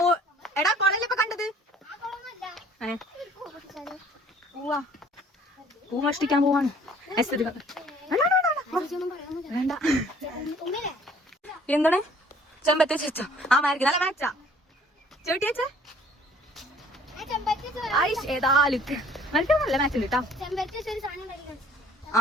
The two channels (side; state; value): both; normal; correlation 0.56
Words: എടാ കൊളല്ലേ ഇപ്പൊ കണ്ടത് പൂവാ പൂ മോഷ്ടിക്കാൻ പോവാണ് വേണ്ട എന്താണ് ചെമ്പത്തെ ചേച്ച ആ മാർക്ക് നല്ല മാച്ചാ ചേട്ടി വെച്ചേ ഏതാലും നല്ല മാച്ച് ഉണ്ട് കേട്ടോ